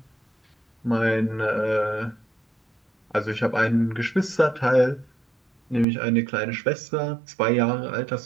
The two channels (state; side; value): drops out; left; at 5.9 s